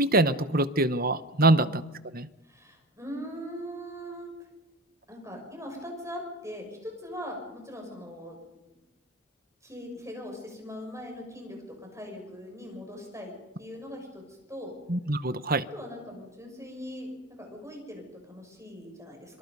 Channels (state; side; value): normal; both; correlation 0.35